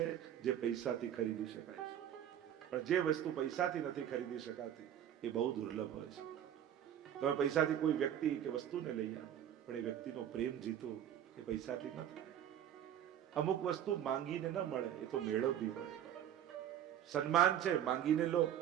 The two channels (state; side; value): quieter; left; 10.3 dB